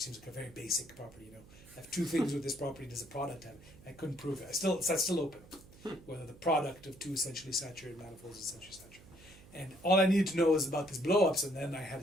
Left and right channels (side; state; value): right; noise; hum, 22 dB below the sound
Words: seems like a very basic property. I have 2 things with this property. Does the product have? I couldn't prove it. That's still open. Whether the product of 2 essentially saturated manifolds is essentially saturated. And all I needed to know was about these blowups, and then I had